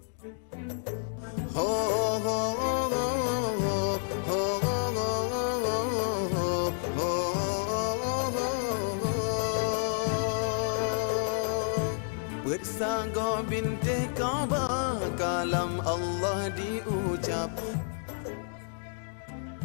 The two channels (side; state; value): right; silent; digital silence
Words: Ho ho ho ho ho ho ho. Bersanggo binti Kaabah kalam Allah diucap.